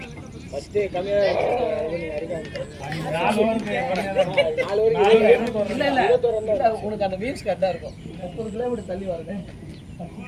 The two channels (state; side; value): identical; both; correlation 1.00